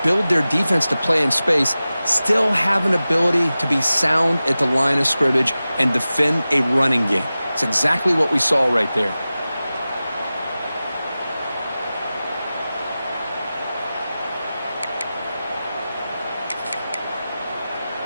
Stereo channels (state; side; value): inverted; both; correlation -0.96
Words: build their defense to play in space still have an ability to be sound at the line of scrimmage and defend a running game. It's exactly what we saw right there.